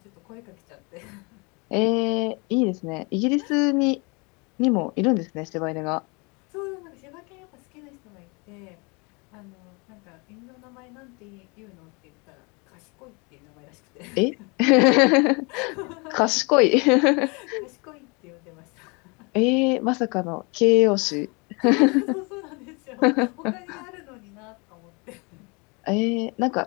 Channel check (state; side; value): quieter; right; 29.9 dB